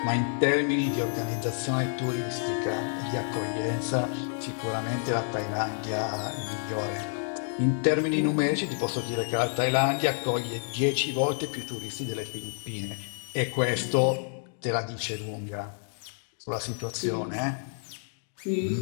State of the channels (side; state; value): right; silent; digital silence